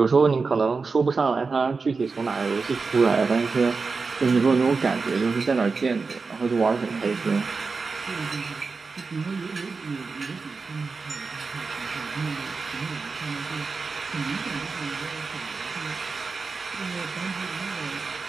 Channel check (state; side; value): quieter; left; 4.4 dB